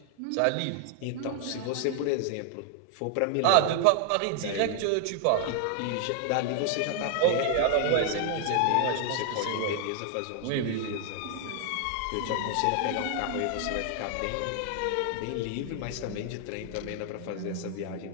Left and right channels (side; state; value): both; different; correlation 0.00